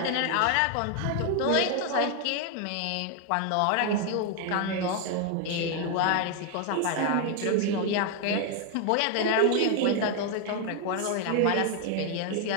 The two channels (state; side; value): different; both; correlation 0.01